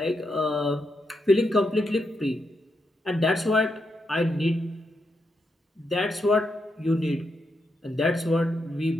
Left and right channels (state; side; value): normal; both; correlation 0.83